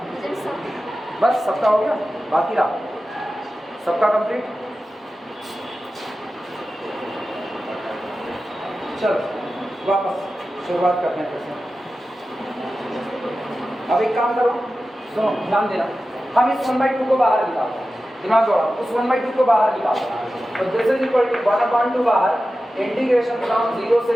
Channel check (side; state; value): both; normal; correlation 0.94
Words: सब बस सबका हो गया, बाकी रहा सबका कंप्लीट। चलो वापस शुरुआत करते हैं फिर से। अब एक काम करो, सुनो ध्यान देना, हम इस 1/2 को बाहर निकालते हैं, दिमाग दौड़ाओ, उस 1/2 को बाहर निकालते हैं, तो दिस इज इक्वल टू 1/2 बाहर, इंटीग्रेशन फ्रॉम 0 से